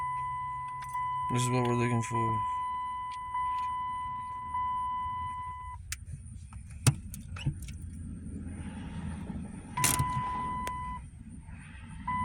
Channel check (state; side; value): identical; both; correlation 1.00